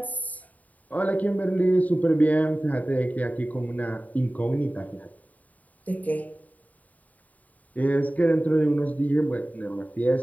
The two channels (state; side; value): late; right; 0.073 ms